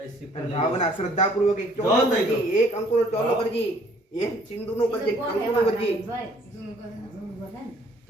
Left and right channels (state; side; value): normal; both; correlation 0.59